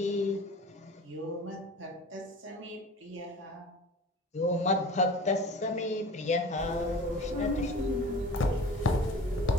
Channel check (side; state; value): both; normal; correlation 0.39